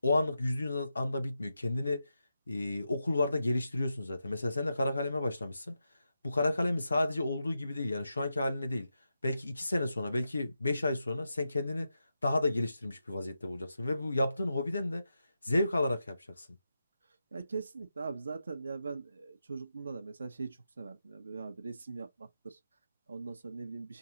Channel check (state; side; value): inverted; both; correlation -0.87